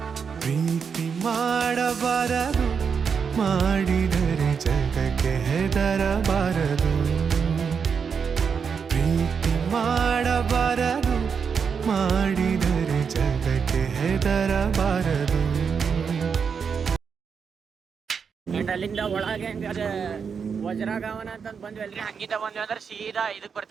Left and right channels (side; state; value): left; quieter; 6.3 dB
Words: ಪ್ರೀತಿ ಮಾಡಬಾರದು ಮಾಡಿದರೆ ಜಗಕ್ಕೆ ಹೆದರಬಾರದು ಪ್ರೀತಿ ಮಾಡಬಾರದು ಮಾಡಿದರೆ ಜಗಕ್ಕೆ ಹೆದರಬಾರದು ಅಂಡ್ ಅಲ್ಲಿಂದ ಒಳಗೆ ಹೆಂಗಾದ್ರೆ ವಜ್ರಗಾವನ ಅಂತಂದು ಬಂದ್ವಿ ಅಲ್ರಿ. ಹಂಗಿಂದ ಬಂದ್ವಿ ಅಂದ್ರೆ ಸೀದಾ ಇದಕ್ಕೆ